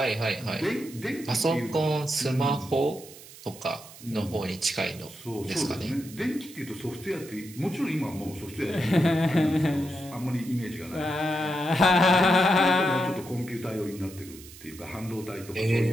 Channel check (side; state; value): right; noise; hiss, 18 dB below the sound